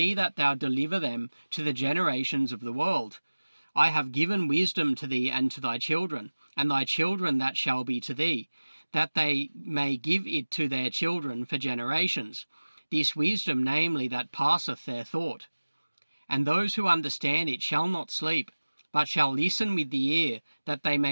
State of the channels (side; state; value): both; inverted; correlation -1.00